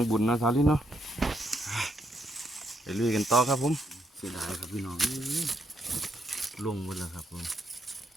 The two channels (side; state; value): both; normal; correlation 0.76